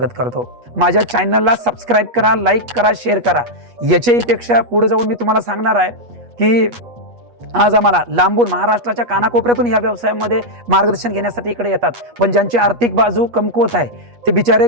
करतो. माझ्या चॅनलला सबस्क्राईब करा, लाईक करा, शेअर करा. याच्याहीपेक्षा पुढे जाऊन मी तुम्हाला सांगणार आहे की आज आम्हाला लांबून महाराष्ट्राच्या कानाकोपऱ्यातून या व्यवसायामध्ये मार्गदर्शन घेण्यासाठी इकडे येतात. पण ज्यांची आर्थिक बाजू कमकुवत आहे, ते बिचारे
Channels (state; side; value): late; left; 8.3 ms